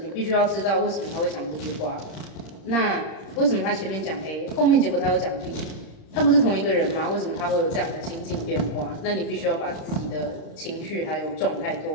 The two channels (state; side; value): late; right; 36 ms